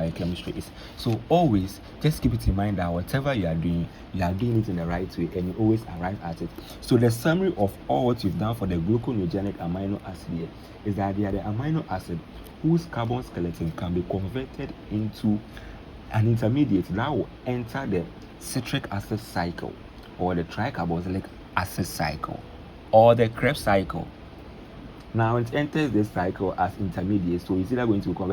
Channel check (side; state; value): both; identical; correlation 1.00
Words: is. So always just keep it in mind that whatever you are doing it in the right way, and you always arrive at it. So the summary of all what you've done for the glucogenic amino acid here is that they are the amino acid whose carbon skeleton can be converted into an intermediate that will enter the citric acid cycle, or the tricarboxylic acid cycle, or the Krebs cycle. Now it enters this cycle as intermediate, so it's either going to be